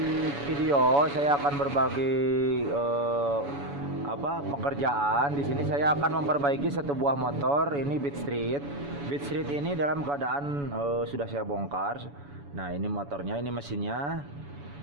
video, saya akan berbagi pekerjaan. Di sini saya akan memperbaiki satu buah motor, ini Beat Street. Beat Street ini dalam keadaan sudah saya bongkar. Nah, ini motornya, ini mesinnya.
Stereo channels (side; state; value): left; late; 7.0 ms